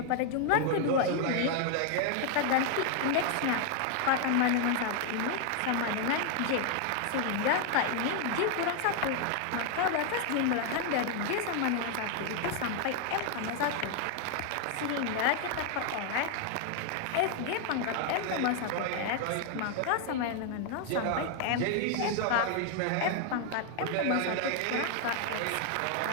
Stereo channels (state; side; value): different; both; correlation 0.00